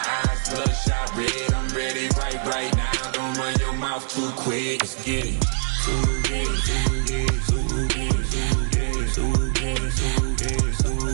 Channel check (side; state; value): left; silent; 63 dB below the other